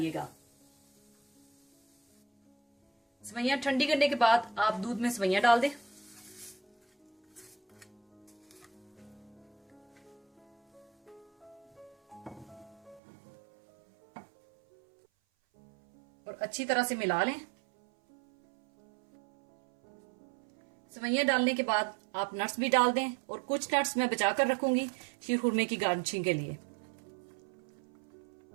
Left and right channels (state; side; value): drops out; left; at 13.0 s